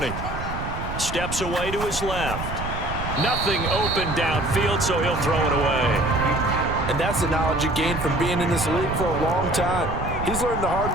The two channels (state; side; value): noise; right; rumble, 6 dB below the sound